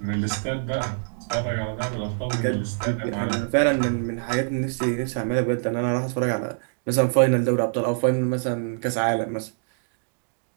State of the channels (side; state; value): left; silent; digital silence